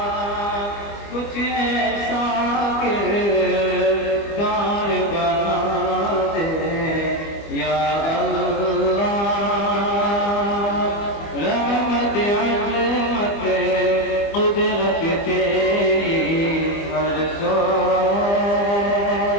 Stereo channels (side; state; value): right; late; 25 ms